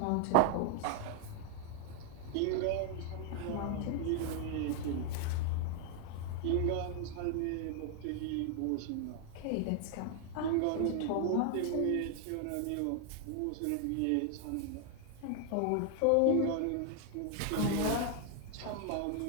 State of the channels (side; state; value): both; different; correlation 0.00